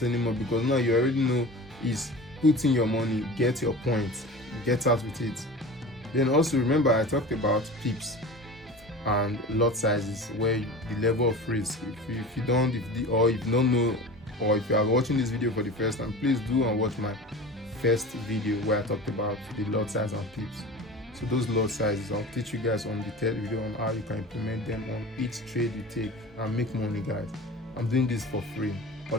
anymore, because now you already know is put in your money, get your points, get out with it. Then also remember I talked about pips and lot sizes, where the level of risk. If you don't know, or if you are watching this video for the first time, please do and watch my first video where I talked about the lot size and pips. So those lot sizes, I'll teach you guys on the third video on how you can implement them on each trade you take and make money, guys. I'm doing this for free.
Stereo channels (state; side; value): normal; both; correlation 0.35